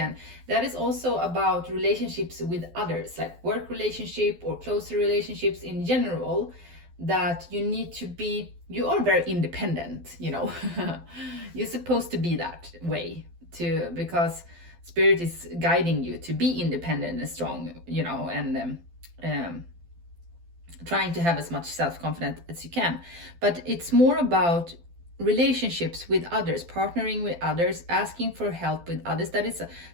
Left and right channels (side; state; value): left; late; 12 ms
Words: that is also about relationships with others, like work relationship or closer relationships in general, that you are very independent, You're supposed to be that way too, because spirit is guiding you to be independent and strong, and trying to have as much self-confidence as you can. But it's more about relationships with others, partnering with others, asking for help with others. That is